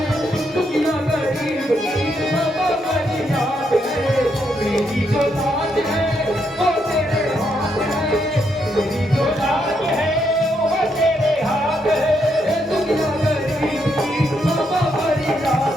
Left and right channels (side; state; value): both; normal; correlation 0.77